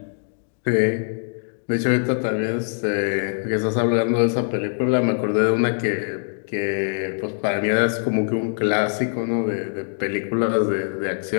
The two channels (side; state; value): right; silent; digital silence